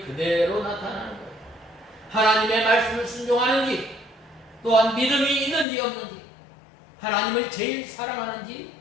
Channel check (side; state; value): right; drops out; at 5.7 s